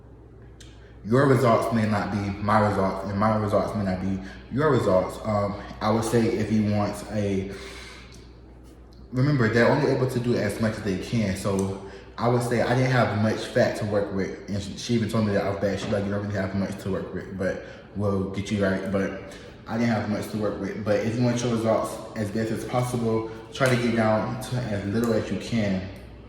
Your results may not be my results, and my results may not be your results. I would say if you want remember, they're only able to do as much as they can. So I would say I didn't have much fat to work with. And she even told me that I was bad. She's like, you don't really have much to work with, but we'll get you right. But I didn't have much to work with. But if you want your results as best as possible, try to get down to as little as you can,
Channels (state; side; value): identical; both; correlation 1.00